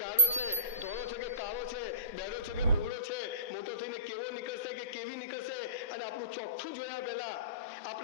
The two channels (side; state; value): both; inverted; correlation -0.37